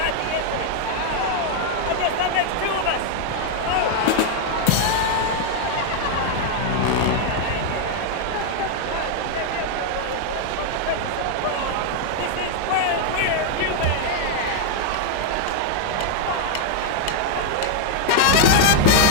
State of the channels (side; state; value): both; different; correlation 0.00